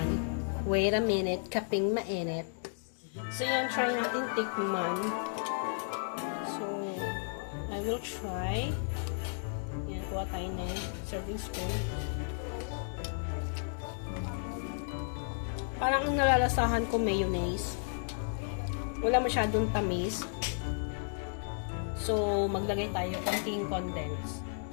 Wait a minute, kaping mainit. So, yun, try natin tikman. So, I will try. Yan, kuha tayo ng serving spoon. Parang ang nalalasahan ko mayonnaise. Wala masyadong tamis. So, maglagay tayo konting condense.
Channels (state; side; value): silent; right; digital silence